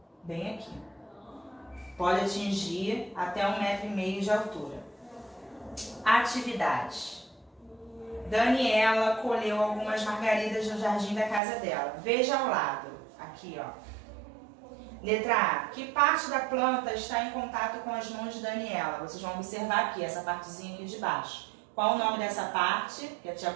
Bem aqui. Pode atingir até 1,5 metro de altura. Atividades. Daniela colheu algumas margaridas no jardim da casa dela. Veja ao lado. Aqui, ó. Letra A. Que parte da planta está em contato com as mãos de Daniela? Vocês vão observar aqui, essa partezinha aqui de baixo. Qual o nome dessa parte, que a tia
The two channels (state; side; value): drops out; left; at 11.4 s